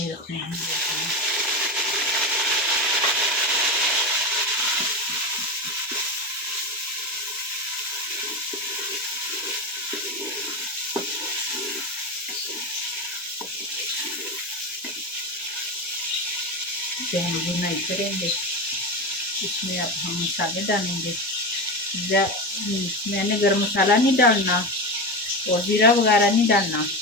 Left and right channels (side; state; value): both; normal; correlation 0.19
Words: इसे हम बुनाई करेंगे। इसमें अब हम मसाले डालेंगे। मैंने गरम मसाला नहीं डालना और जीरा वगैरह नहीं डालना।